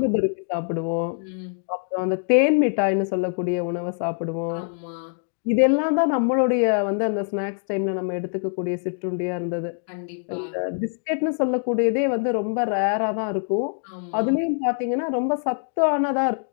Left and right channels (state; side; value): silent; right; 63 dB below the other